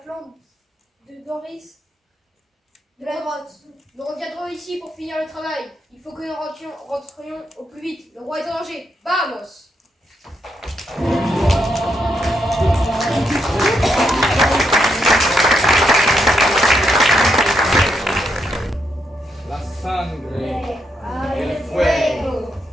de Doris de la grotte. Nous reviendrons ici pour finir le travail. Il faut que nous rentrions au plus vite. Le roi est en danger. Vamos! La sangre y el fuego.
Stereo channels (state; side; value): normal; both; correlation 0.79